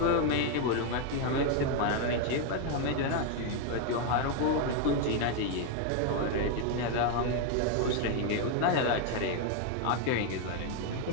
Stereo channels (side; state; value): both; different; correlation 0.01